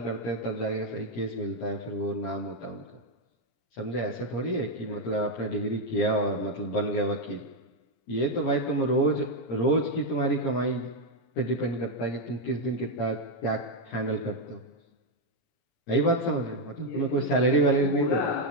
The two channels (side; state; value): right; late; 17 ms